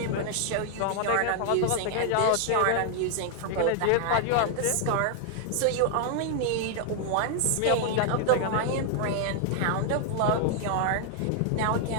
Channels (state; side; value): different; both; correlation 0.00